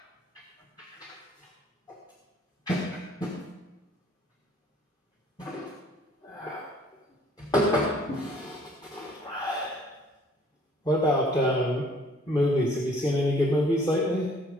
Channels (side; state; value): both; normal; correlation 0.58